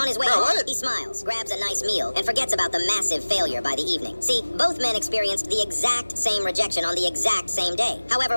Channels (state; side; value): inverted; both; correlation -1.00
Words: his way home, he smiles, grabs a nice meal, and forgets about the massive failure by the evening. See, both men experienced the exact same rejection on the exact same day.